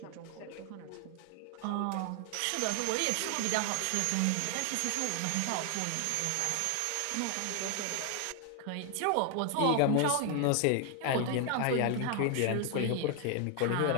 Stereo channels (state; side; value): different; both; correlation 0.00